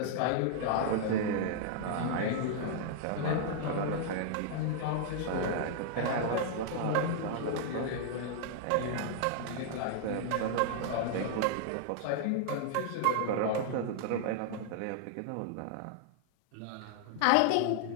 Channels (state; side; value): different; both; correlation 0.00